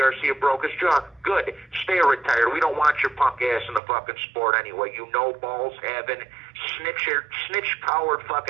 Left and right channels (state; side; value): drops out; left; at 3.8 s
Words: broke his jaw. Good. Stay retired. We don't want your punk ass in the fucking sport anyway. You know balls having snitch-powered